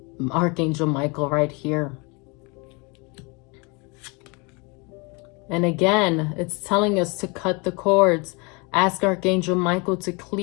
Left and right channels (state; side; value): quieter; right; 29.6 dB